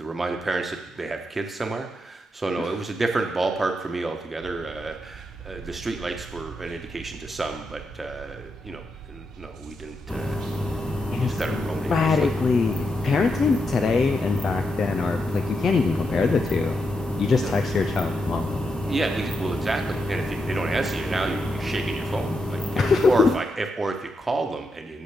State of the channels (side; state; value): both; normal; correlation 0.84